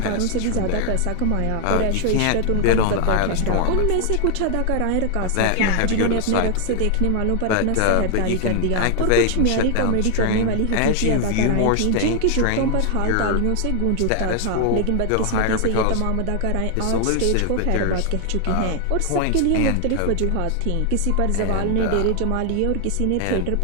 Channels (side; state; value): both; different; correlation 0.00